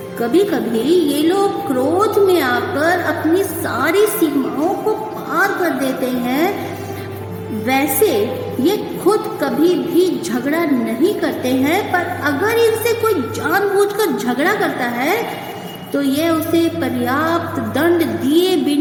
कभी कभी ये लोग क्रोध में आकर अपनी सारी सीमाओं को पार कर देते हैं। वैसे ये खुद कभी भी झगड़ा नहीं करते हैं, पर अगर इनसे कोई जानबूझकर झगड़ा करता है तो ये उसे पर्याप्त दंड दिए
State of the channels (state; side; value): identical; both; correlation 1.00